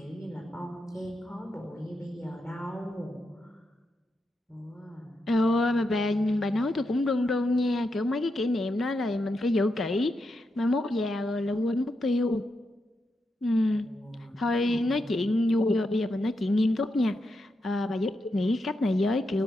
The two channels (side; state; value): both; normal; correlation 0.85